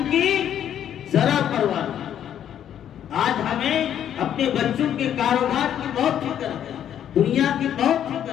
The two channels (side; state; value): right; quieter; 10.0 dB